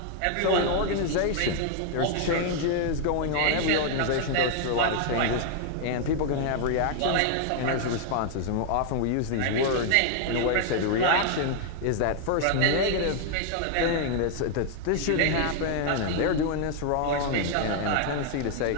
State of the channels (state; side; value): different; both; correlation 0.00